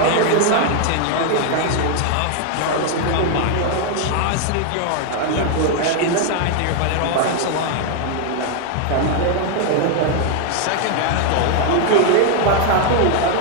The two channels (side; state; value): both; different; correlation 0.00